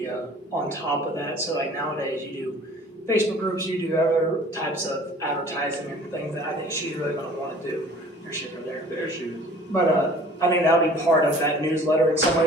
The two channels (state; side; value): normal; both; correlation 0.49